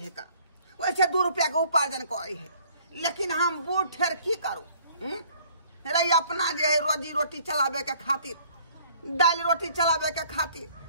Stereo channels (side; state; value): both; inverted; correlation -0.57